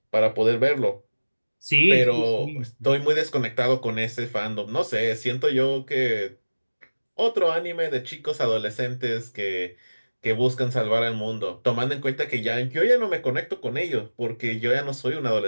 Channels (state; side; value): inverted; both; correlation -1.00